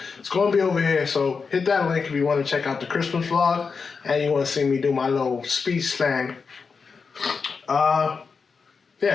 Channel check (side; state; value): right; quieter; 5.2 dB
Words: it's going to be over here. So hit that link if you want to check out the Christmas vlog and you want to see me do my little speech slang.